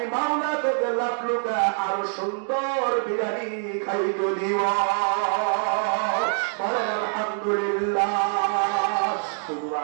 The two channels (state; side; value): silent; left; digital silence